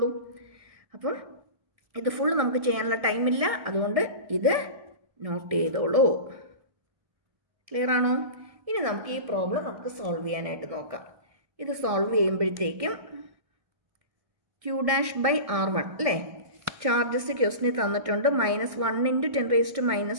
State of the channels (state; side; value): late; left; 1.6 ms